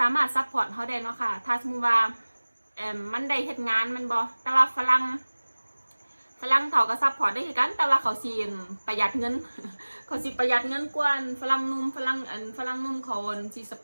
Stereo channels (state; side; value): inverted; both; correlation -1.00